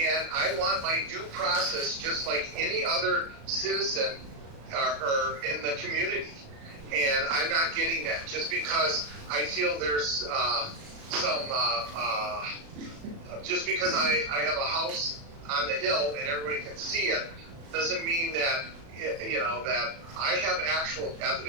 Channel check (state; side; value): late; left; 36 ms